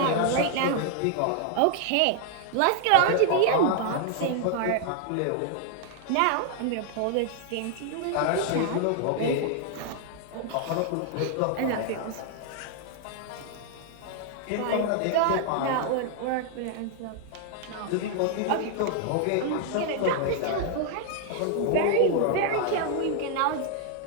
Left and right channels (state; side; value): different; both; correlation 0.00